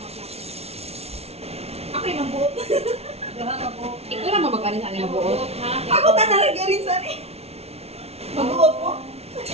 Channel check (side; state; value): left; late; 0.30 ms